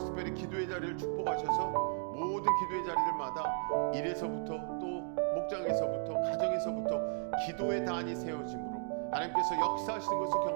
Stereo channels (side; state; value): left; silent; 55 dB below the other